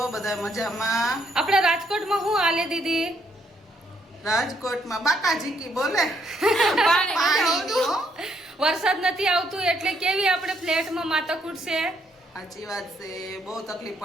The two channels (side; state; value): both; normal; correlation 0.72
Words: બધા? મજામાં? આપણે રાજકોટમાં હું આલે દીદી? રાજકોટમાં બાકાજી કી બોલે પાણી વરસાદ નથી આવતું એટલે કેવી આપણે ફ્લેટમાં માથાકૂટ છે. સાચી વાત છે. બહુ તકલીફ